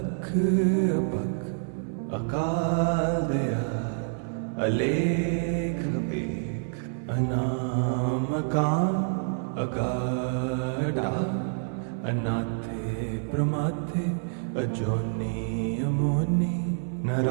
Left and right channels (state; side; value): silent; left; 60 dB below the other